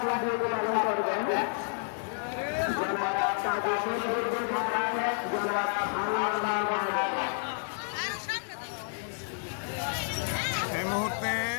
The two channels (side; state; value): right; silent; digital silence